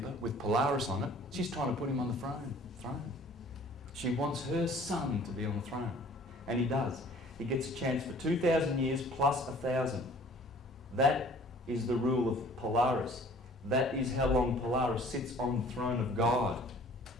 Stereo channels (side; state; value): both; normal; correlation 0.52